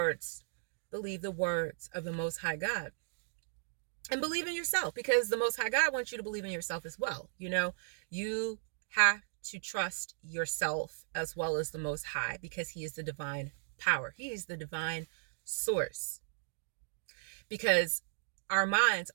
of the Most High God. And believe in yourself, because the Most High God wants you to believe in yourself as well. You have to trust yourself as well as the Most High, because He is the divine power. He is the divine source. Because our minds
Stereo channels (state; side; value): silent; left; digital silence